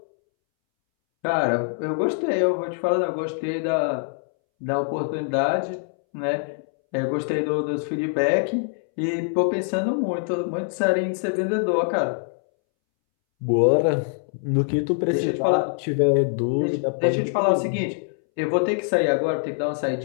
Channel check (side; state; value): right; silent; 63 dB below the other